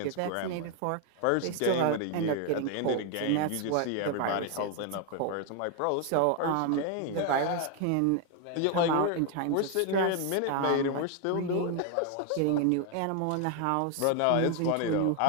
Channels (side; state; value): both; different; correlation 0.01